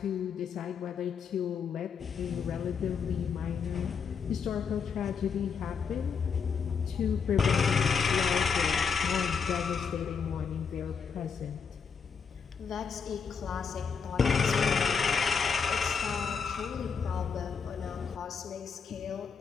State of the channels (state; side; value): quieter; right; 6.1 dB